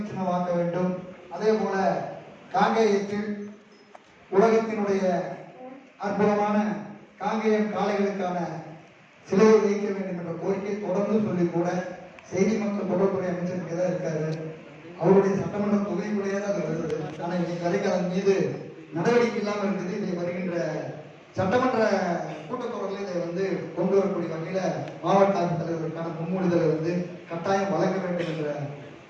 சின்னமாக்க வேண்டும். அதே போல காங்கேயத்தில் உலகத்தினுடைய அற்புதமான காங்கேயம் காளைகளுக்கான சிலையை வைக்க வேண்டும் என்ற கோரிக்கை தொடர்ந்து சொல்லி கூட செய்தி மக்கள் தொடர்புடைய அமைச்சருக்கு தான் இருக்காரு. அவருடைய சட்டமன்ற தொகுதிக்குள்ளேயே தான் அது வருது. ஆனால் இன்னைக்கு வரைக்கும் அதன் மீது நடவடிக்கை இல்லாமல் இருக்குது. இதை வருகின்ற சட்டமன்ற கூட்டத்தொடரில் இதை கொண்டு வரக்கூடிய வகையில மாவட்ட ஆட்சித்தலைவருக்கான முன்மொழிதலை கட்டாயம் வழங்க வேண்டும் என்ற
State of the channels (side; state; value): both; identical; correlation 1.00